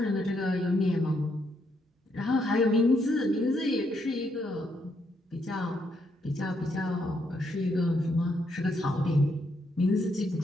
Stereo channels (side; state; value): both; normal; correlation 0.76